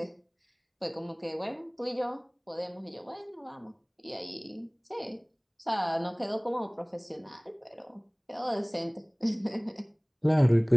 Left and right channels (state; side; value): identical; both; correlation 1.00